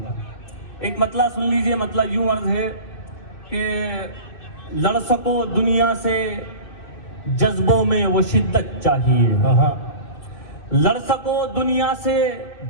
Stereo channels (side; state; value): right; late; 2.6 ms